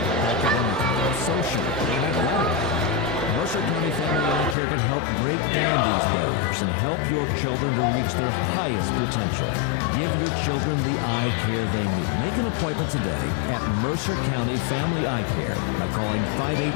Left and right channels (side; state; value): right; drops out; at 4.5 s